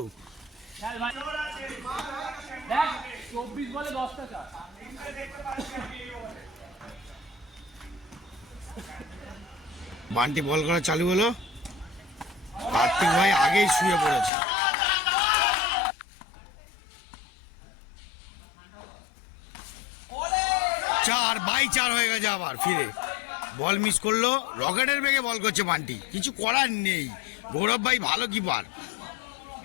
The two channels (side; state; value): right; drops out; at 14.3 s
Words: বান্টি বল করা চালু হলো। কার্তিক ভাই আগেই শুয়ে পড়েছে। চার বাই চার হয়ে গেছে। আবার ফিরে বল মিস করলো, রকেটের বেগে বল করছে বান্টি, কিছু করার নেই। গৌরব ভাই ভালো কিপার।